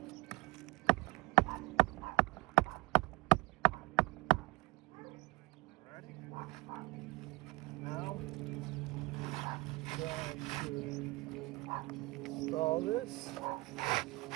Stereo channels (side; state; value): left; quieter; 21.5 dB